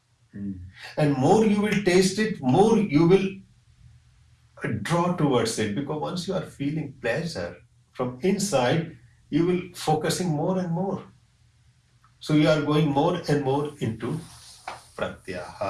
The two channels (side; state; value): both; identical; correlation 1.00